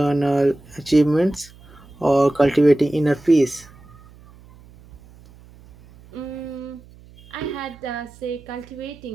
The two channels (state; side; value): noise; right; hum, 23 dB below the sound